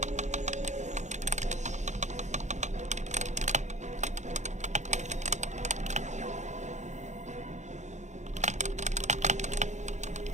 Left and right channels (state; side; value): late; left; 0.34 ms